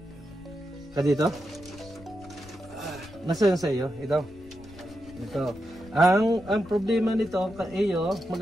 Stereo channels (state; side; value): noise; left; rumble, 21 dB below the sound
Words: Kadito? Nasa yun sa iyo? Ito. Ang problema nito, iyo,